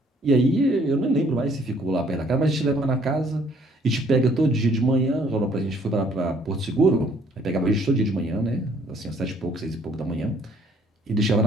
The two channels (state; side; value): normal; both; correlation 0.62